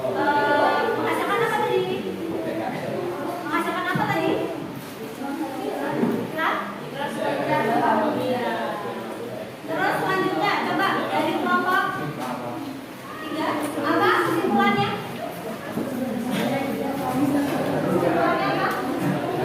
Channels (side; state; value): both; identical; correlation 1.00